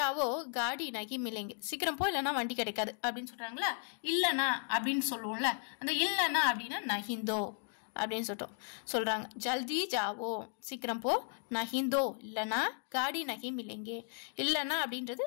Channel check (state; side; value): silent; right; 54 dB below the other